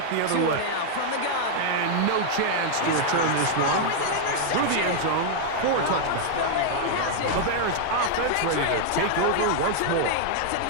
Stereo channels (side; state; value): both; different; correlation -0.01